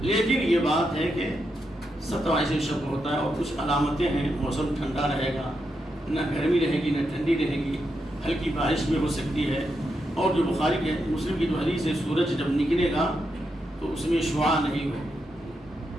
لیکن یہ بات ہے کہ 27ویں شب ہوتا ہے، اور کچھ علامتیں ہیں، موسم ٹھنڈا رہے گا، نہ گرمی رہے گی نہ ٹھنڈی رہے گی، ہلکی بارش بھی ہو سکتی ہے، اور جو بخاری کے مسلم کی جو حدیث ہے سورج جب نکلے گا تو اس میں شعاع نہیں ہوگی،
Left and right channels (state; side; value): normal; both; correlation 0.84